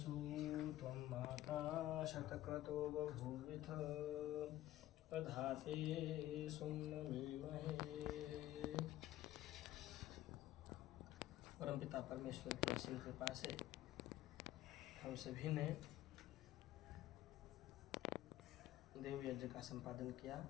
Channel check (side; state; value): right; quieter; 14.7 dB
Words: त्वं माता शतक्रतो बभूविथ प्रधाते सुम्नमीमहे। परमपिता परमेश्वर की असीम कृपा से हम सभी ने देव यज्ञ का संपादन किया,